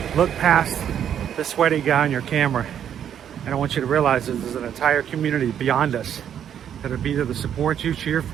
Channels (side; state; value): left; quieter; 9.3 dB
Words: Look past the sweaty guy on your camera, and I want you to realize that there's an entire community beyond us that will be there to support you, cheer